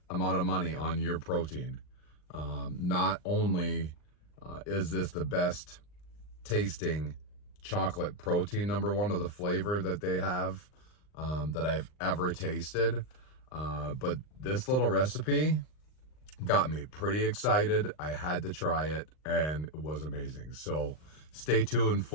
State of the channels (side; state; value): right; late; 39 ms